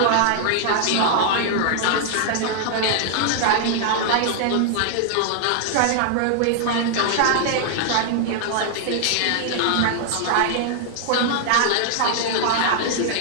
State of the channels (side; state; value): both; different; correlation 0.00